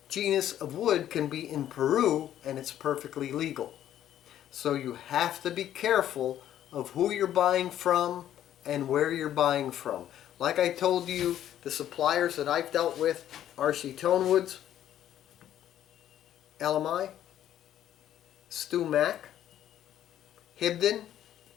genus of wood can be in Peru, and it's perfectly legal. So you have to be careful of who you're buying from and where you're buying from. Like I told you, the suppliers that I've dealt with, RC Tonewoods, LMI, Stu Mac, Hibden,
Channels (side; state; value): right; quieter; 11.4 dB